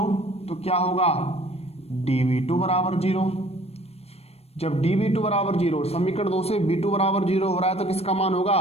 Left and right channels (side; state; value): right; late; 0.30 ms